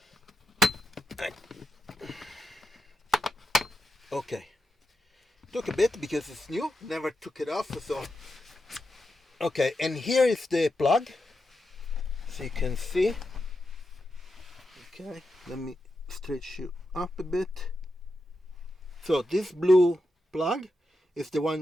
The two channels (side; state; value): both; normal; correlation 0.87